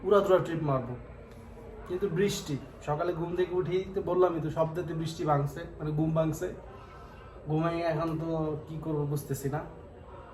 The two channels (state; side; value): identical; both; correlation 1.00